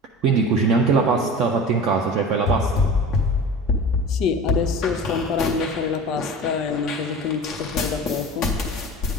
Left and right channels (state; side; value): normal; both; correlation 0.35